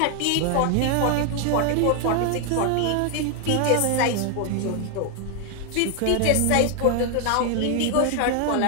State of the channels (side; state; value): both; different; correlation 0.01